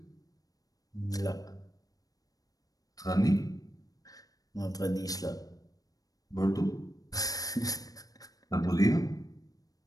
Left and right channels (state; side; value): late; right; 0.18 ms